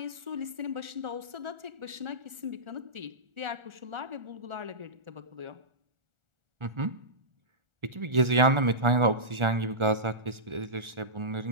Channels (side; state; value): left; late; 1.4 ms